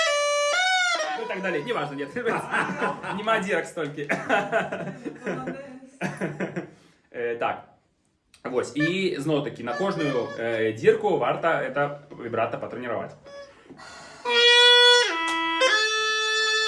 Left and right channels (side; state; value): both; identical; correlation 1.00